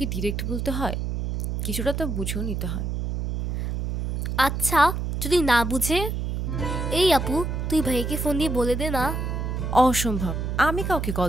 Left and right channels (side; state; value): right; noise; hum, 2 dB below the sound